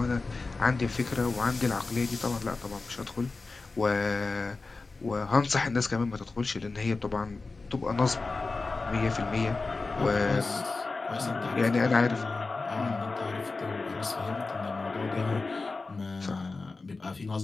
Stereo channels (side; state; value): right; quieter; 3.8 dB